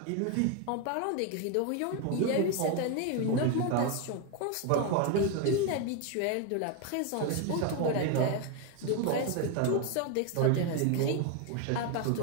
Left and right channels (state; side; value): different; both; correlation 0.01